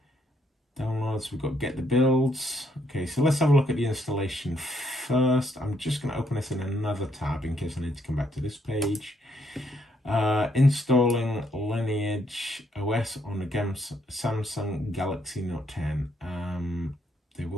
Downloads, we've got get the builds. Okay, so let's have a look at the installation first. I'm just going to open this in another tab in case I need to come back to this page. Installing Lineage OS on the Samsung Galaxy Note 10. They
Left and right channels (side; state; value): both; normal; correlation 0.73